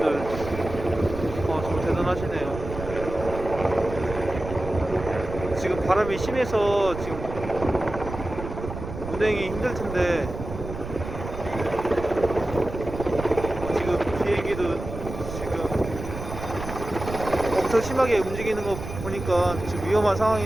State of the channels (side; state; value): right; noise; rumble, 9 dB below the sound